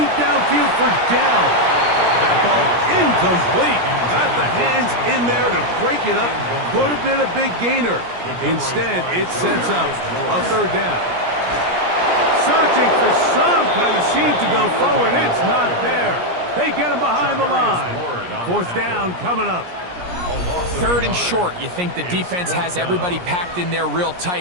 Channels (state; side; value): late; left; 17 ms